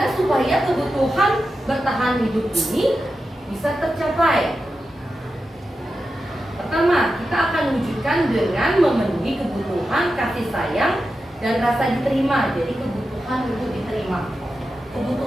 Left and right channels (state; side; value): normal; both; correlation 0.90